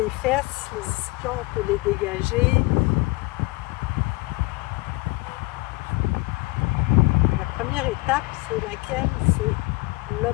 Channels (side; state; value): right; quieter; 23.9 dB